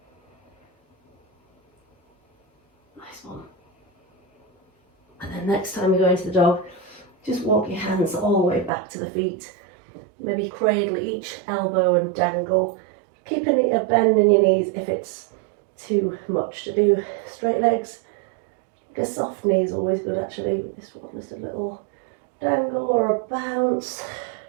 Nice one. And then next time you go into the dog, just walk your hands all the way back to the feet. Maybe cradle each elbow and dangle. Keeping a bend in your knees if it's too much to do. Straight legs. A soft knee is always good actually. This one, just a little dangle or a bounce.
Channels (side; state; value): left; drops out; at 8.7 s